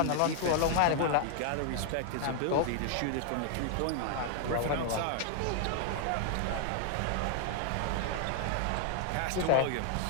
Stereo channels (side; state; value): both; different; correlation 0.00